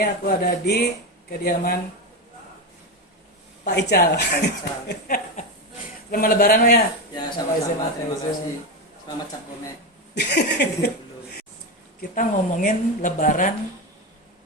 aku ada di kediaman Pak Ical. Selamat Lebaran Pak, ya. Ya, sama-sama. Terima kasih. Selamat Cap Gome. Kita ngomongin Lebaran.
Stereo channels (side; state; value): both; normal; correlation 0.15